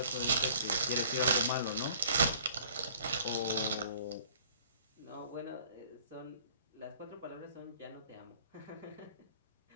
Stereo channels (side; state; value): both; inverted; correlation -0.54